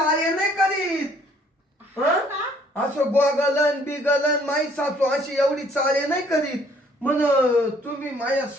नाही करीत. असं गोगलन बिगलन, माई सासू अशी एवढी चाळे नाही करीत. म्हण तुम्ही माझ्या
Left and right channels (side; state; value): both; normal; correlation 0.61